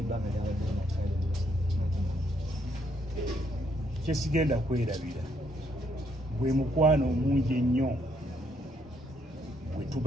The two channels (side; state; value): both; normal; correlation 0.72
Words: lyabadde nakyali kyesigenda kwerabira bwe mukwano omungi ennyo bwe